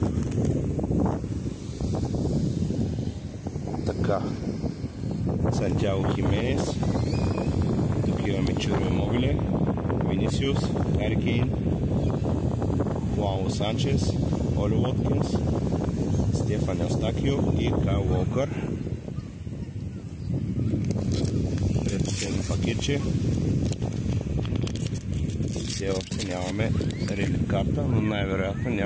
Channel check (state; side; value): identical; both; correlation 1.00